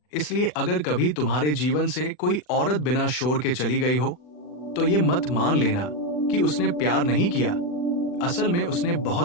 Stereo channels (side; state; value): right; late; 40 ms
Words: इसलिए अगर कभी तुम्हारे जीवन से कोई औरत बिना शोर के चली गई हो, तो ये मत मान लेना कि उसने प्यार नहीं किया। असल में उसने